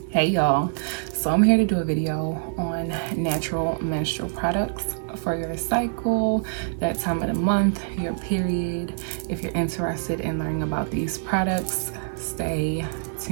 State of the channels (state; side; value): silent; left; 55 dB below the other